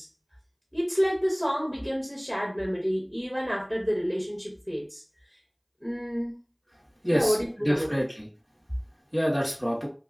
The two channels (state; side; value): identical; both; correlation 1.00